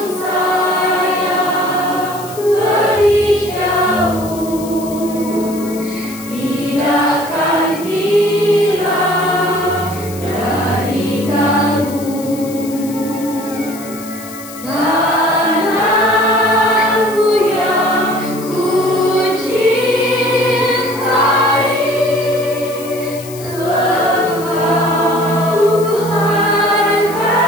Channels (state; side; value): noise; left; hiss, 16 dB below the sound